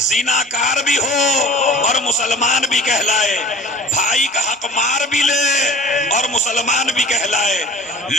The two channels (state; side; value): normal; both; correlation 0.43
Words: بھی ہو اور مسلمان بھی کہلائے، بھائی کا حق مار بھی لے اور مسلمان بھی کہلائے،